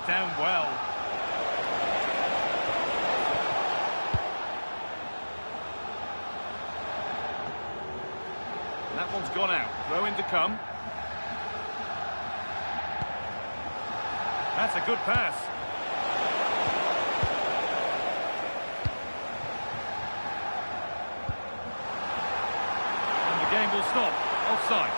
down well. And that one's gone out. Throw in to come. That's a good pass. And the game will stop. Offside.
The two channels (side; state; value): both; inverted; correlation -1.00